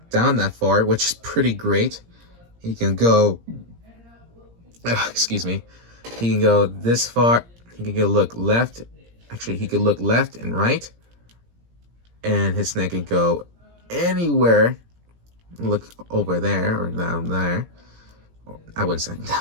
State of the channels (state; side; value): late; left; 17 ms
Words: down that far, which is pretty great. He can go, excuse me, he can go this far. He can go look left. Actually, he could look left and right, and his neck can go anywhere. Look over there or down there. I wouldn't say